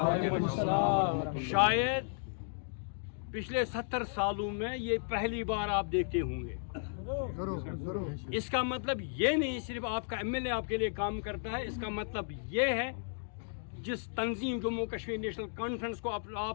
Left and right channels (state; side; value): silent; right; digital silence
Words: वबरकातुहू। शायद पिछले 70 सालों में ये पहली बार आप देखते होंगे। इसका मतलब ये नहीं सिर्फ आपका एमएलए आपके लिए काम करता है, इसका मतलब ये है जिस तंजीम जम्मू कश्मीर नेशनल कॉन्फ्रेंस को